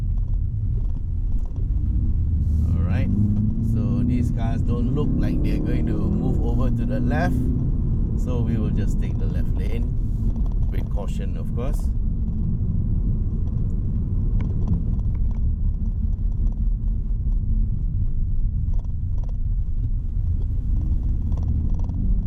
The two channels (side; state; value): both; identical; correlation 1.00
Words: Alright, so these cars don't look like they're going to move over to the left, so we will just take the left lane with caution, of course.